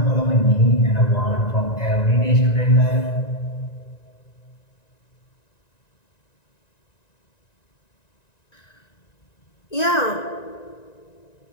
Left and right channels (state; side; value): late; right; 1.9 ms